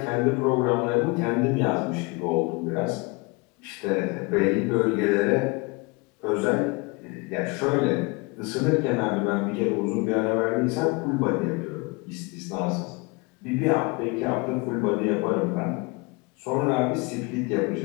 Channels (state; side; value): quieter; right; 27.2 dB